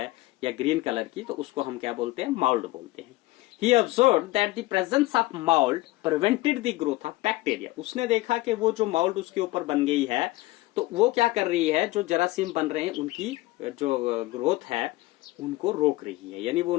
या ग्रीन कलर की, तो उसको हम क्या बोलते हैं? माउल्ड बोलते हैं। He observed that the presence of mold prevented the growth of bacteria। उसने देखा कि वो जो माउल्ड उसके ऊपर बन गई है, तो वो क्या कर रही है, जो जरासीम बन रहे हैं उनकी जो ग्रोथ है उनको रोक रही है, यानी वो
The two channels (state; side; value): quieter; right; 19.5 dB